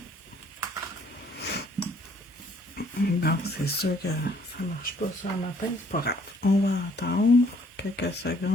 Bon, c'est sûr que ça marche pas ça le matin, c'est pas grave. On va attendre quelques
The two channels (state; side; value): normal; both; correlation 0.62